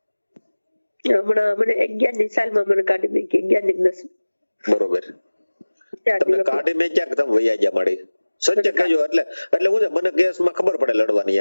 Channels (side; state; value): both; inverted; correlation -1.00